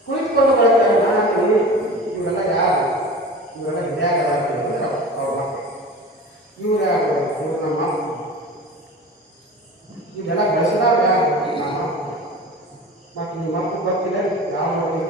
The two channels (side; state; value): both; normal; correlation 0.35